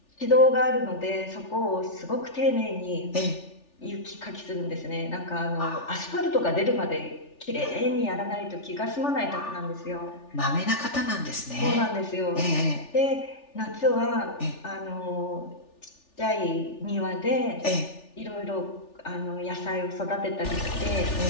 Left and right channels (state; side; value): late; right; 3.4 ms